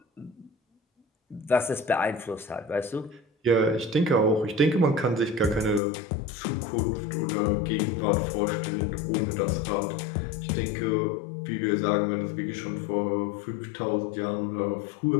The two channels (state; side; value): drops out; right; at 5.8 s